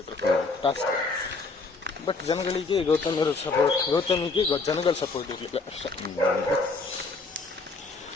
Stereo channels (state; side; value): quieter; right; 3.9 dB